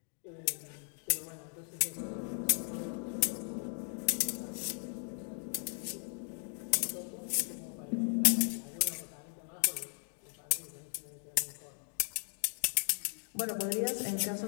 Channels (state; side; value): silent; right; 53 dB below the other